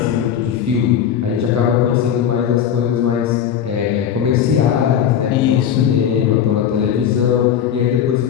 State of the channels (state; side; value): quieter; right; 8.9 dB